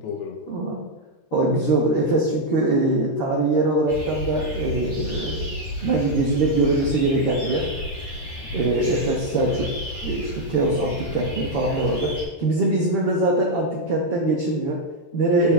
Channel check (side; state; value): right; late; 13 ms